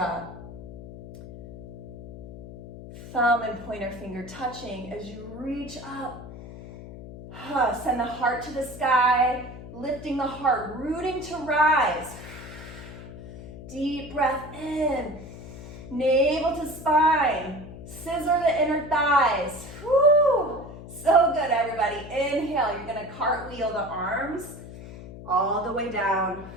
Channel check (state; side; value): noise; left; hum, 14 dB below the sound